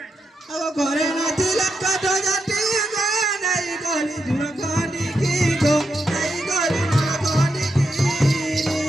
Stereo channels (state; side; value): normal; both; correlation 0.84